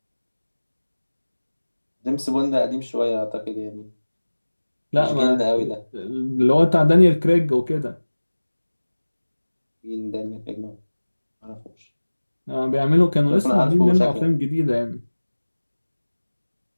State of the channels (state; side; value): inverted; both; correlation -1.00